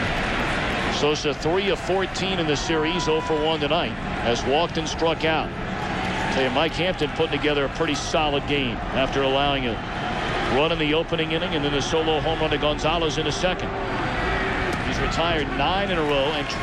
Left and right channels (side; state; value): both; identical; correlation 1.00